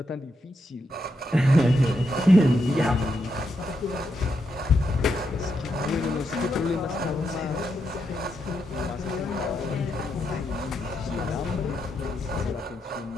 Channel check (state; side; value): normal; both; correlation 0.82